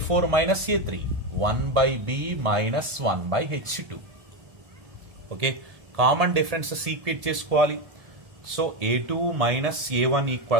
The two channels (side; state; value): left; late; 1.7 ms